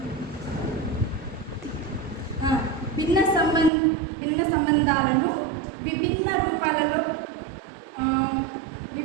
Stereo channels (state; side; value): drops out; left; at 3.7 s